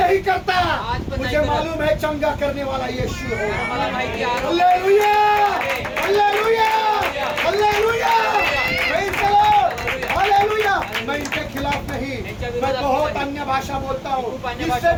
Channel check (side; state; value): both; identical; correlation 1.00